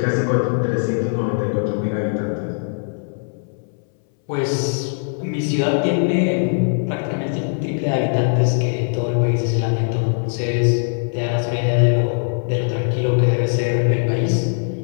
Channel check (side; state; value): right; silent; 65 dB below the other